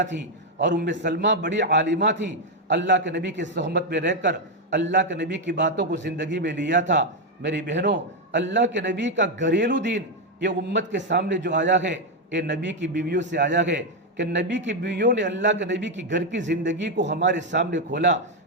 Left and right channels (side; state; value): both; normal; correlation 0.04